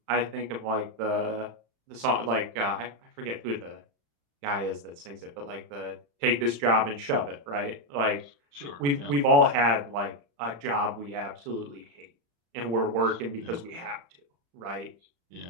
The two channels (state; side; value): late; left; 35 ms